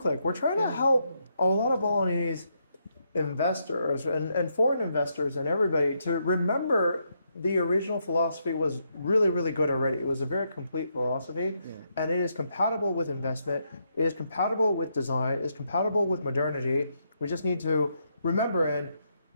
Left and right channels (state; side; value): inverted; both; correlation -0.78